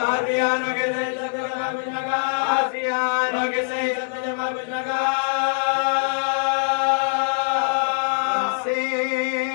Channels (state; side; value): silent; right; digital silence